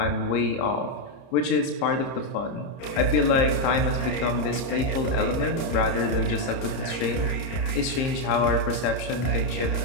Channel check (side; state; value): right; late; 30 ms